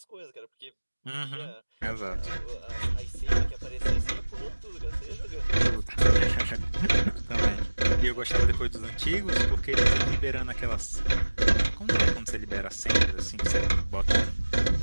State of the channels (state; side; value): inverted; both; correlation -1.00